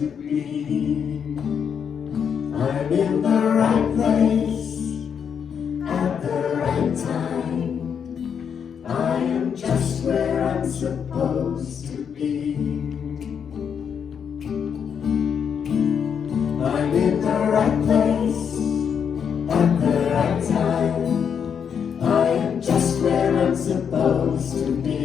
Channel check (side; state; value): right; quieter; 7.4 dB